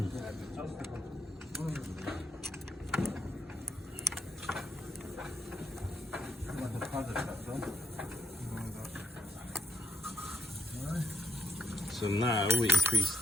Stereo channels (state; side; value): normal; both; correlation 0.81